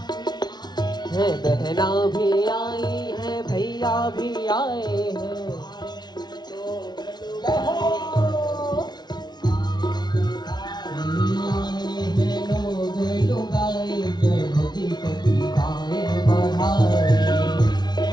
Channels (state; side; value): late; right; 0.20 ms